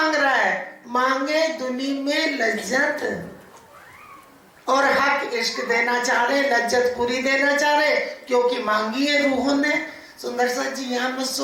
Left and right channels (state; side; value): identical; both; correlation 1.00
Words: रहा है, मांगे दुनिया में लज्जत और हक इश्क देना चाह रहे, लज्जत पूरी देना चाह रहे, क्योंकि मांगी है रूहों ने। सुंदर सा जी यहाँ मत